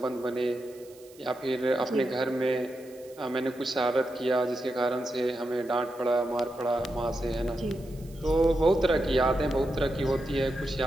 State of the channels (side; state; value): right; noise; hiss, 25 dB below the sound